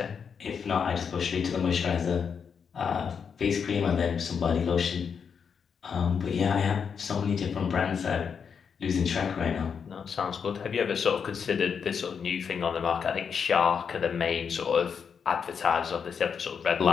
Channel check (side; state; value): right; quieter; 6.6 dB